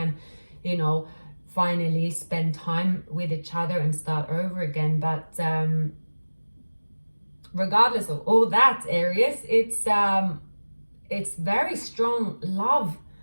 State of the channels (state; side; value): inverted; both; correlation -1.00